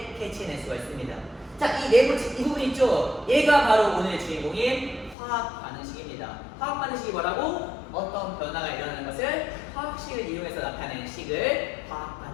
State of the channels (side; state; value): right; drops out; at 5.2 s